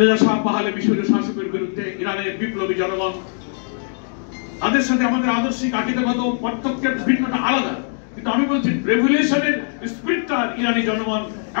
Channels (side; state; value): right; silent; digital silence